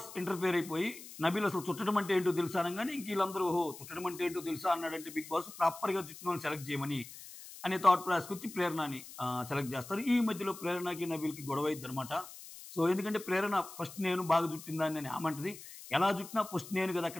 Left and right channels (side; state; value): left; noise; hiss, 15 dB below the sound